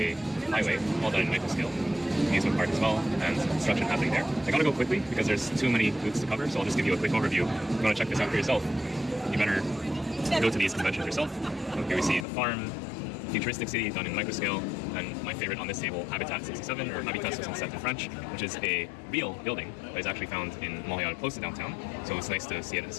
highway, all done in micro scale. Amusement park as well, and some construction happening there. I gotta go quickly because there's too many booths to cover, so I'll just give you a quick overview. If you want to check this out for yourself, you better go to these conventions yourself. So here we see the farm, futuristic city done in micro scale, and my favorite on this table, Habitat 67, or Habitat 67 in French, which is a real building that is actually found in Montreal, close to downtown. So it's nice to see it at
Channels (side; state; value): right; drops out; at 12.2 s